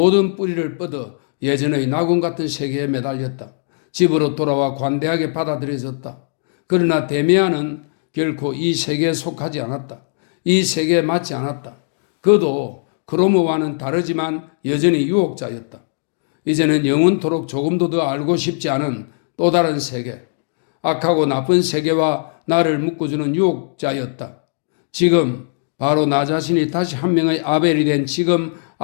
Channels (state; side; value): silent; right; digital silence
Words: 뿌리를 뻗어 예전의 낙원 같은 세계에 매달렸다. 집으로 돌아와 관대하게 받아들여졌다. 그러나 데미안은 결코 이 세계에 속하지 않았다. 이 세계에 맞지 않았다. 그도 크로모와는 다르지만 여전히 유혹자였다. 이제는 영원토록 조금도 더 알고 싶지 않은 또 다른 세계, 악하고 나쁜 세계와 나를 묶어주는 유혹자였다. 지금 바로 나 자신이 다시 한 명의 아벨이 된 지금